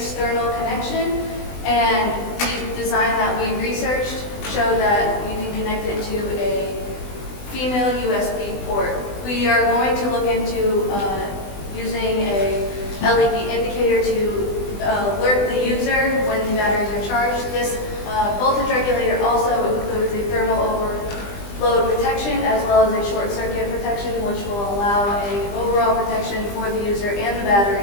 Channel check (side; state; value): right; late; 20 ms